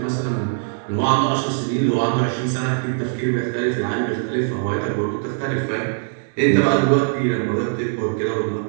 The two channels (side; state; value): left; silent; digital silence